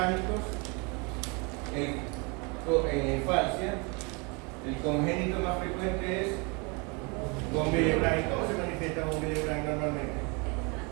en la infancia, el congénito más frecuente es von Willebrand. ¿Cómo se manifiesta von Willebrand normalmente?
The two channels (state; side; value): quieter; left; 30.8 dB